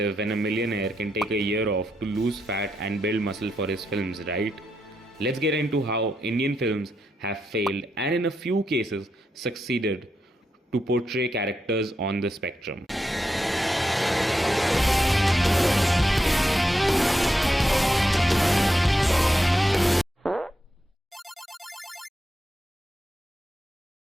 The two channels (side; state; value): both; normal; correlation 0.84